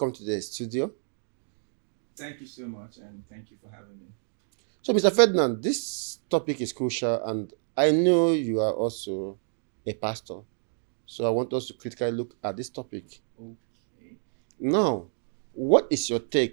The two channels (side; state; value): left; silent; 58 dB below the other